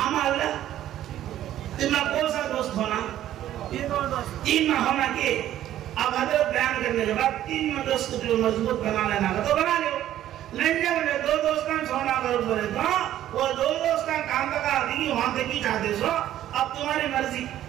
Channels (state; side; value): quieter; left; 12.4 dB